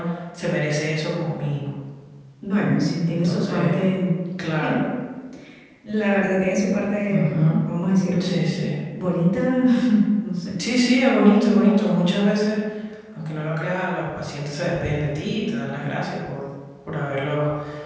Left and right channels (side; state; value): both; identical; correlation 1.00